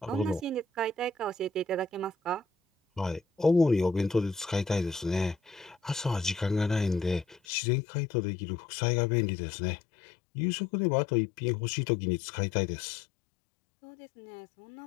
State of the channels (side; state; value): right; drops out; at 7.4 s